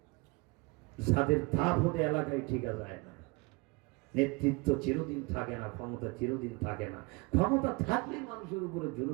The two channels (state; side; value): quieter; left; 26.8 dB